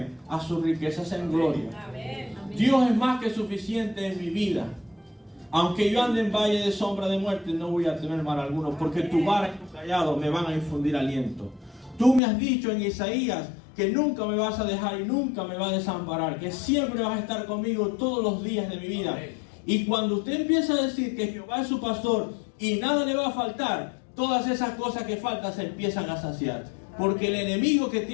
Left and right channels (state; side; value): drops out; right; at 12.2 s